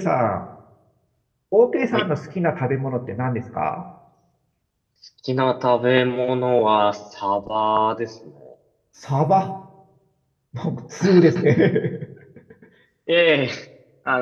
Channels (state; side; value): identical; both; correlation 1.00